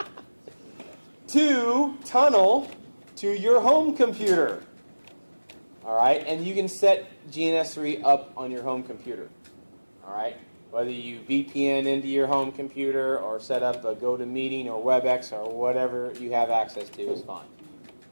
to tunnel to your home computer. All right, and you can set GNS3 up on your home computer. All right, whether you VPN into your home computer or set up a GoToMeeting or WebEx or whatever you have access to is fine.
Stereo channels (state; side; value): inverted; both; correlation -1.00